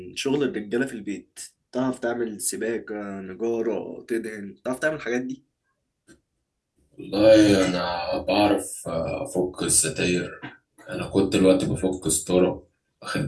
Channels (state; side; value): identical; both; correlation 1.00